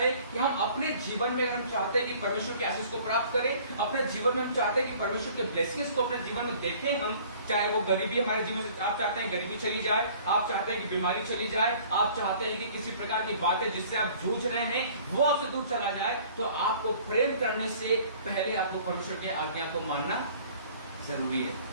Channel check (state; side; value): inverted; both; correlation -0.52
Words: कि हम अपने जीवन में अगर हम चाहते हैं कि परमेश्वर के आशीष को प्राप्त करें, अपने जीवन में हम चाहते हैं कि परमेश्वर के ब्लेसिंग्स को अपने जीवन में देखें, हम चाहे वो गरीबी हमारे जीवन से, आप चाहते हैं गरीबी चली जाए, आप चाहते हैं कि बीमारी चली जाए, आप चाहते हैं कि किसी प्रकार की बातें जिससे आप जूझ रहे हैं वो आपसे दूर चला जाए, तो आपको प्रेम करने से पहले आपको परमेश्वर की आज्ञा को मानना जरूरी है।